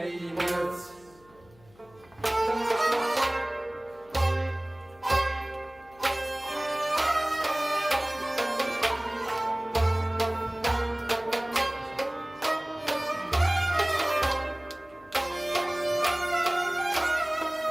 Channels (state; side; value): noise; left; hum, 28 dB below the sound